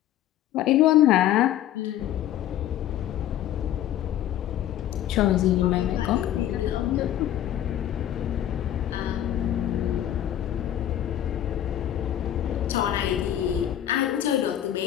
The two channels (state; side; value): quieter; right; 11.7 dB